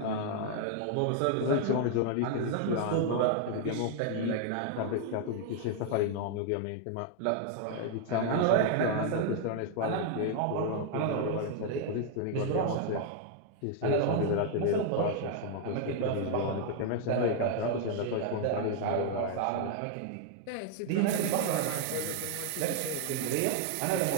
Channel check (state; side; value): different; both; correlation 0.00